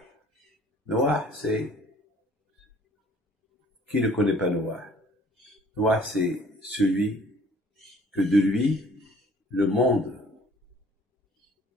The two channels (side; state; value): both; normal; correlation 0.55